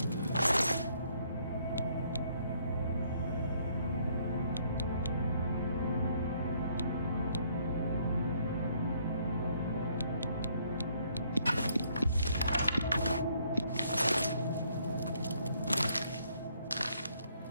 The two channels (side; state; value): both; inverted; correlation -0.67